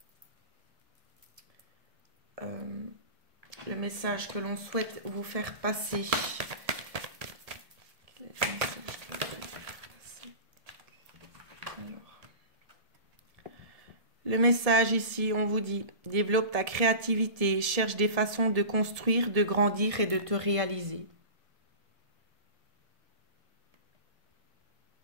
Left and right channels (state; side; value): late; left; 1.7 ms